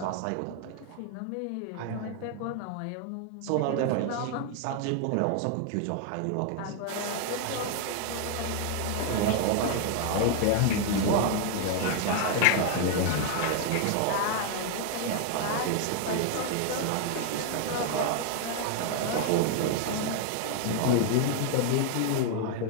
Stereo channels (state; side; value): different; both; correlation 0.00